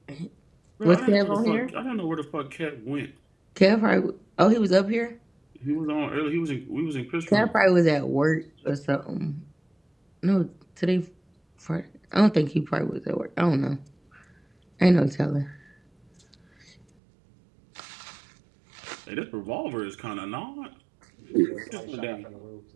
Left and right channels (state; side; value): drops out; left; at 16.9 s